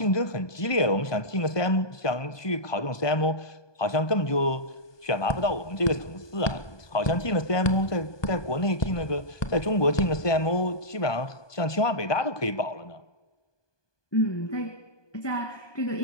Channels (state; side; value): late; right; 1.2 ms